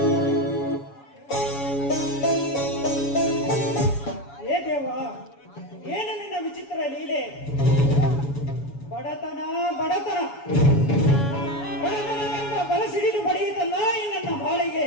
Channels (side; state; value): right; late; 7.2 ms